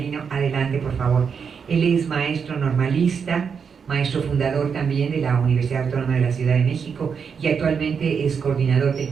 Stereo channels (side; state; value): left; quieter; 6.4 dB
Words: adelante por favor. Él es maestro normalista, maestro fundador también de la Universidad Autónoma de la Ciudad de México y actualmente es coordinador del